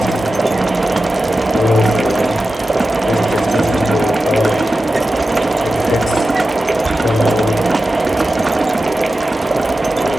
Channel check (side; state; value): both; normal; correlation 0.93